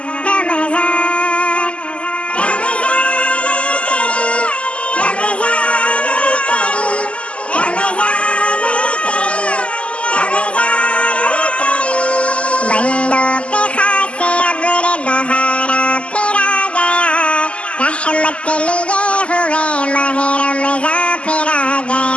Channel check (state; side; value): late; right; 0.057 ms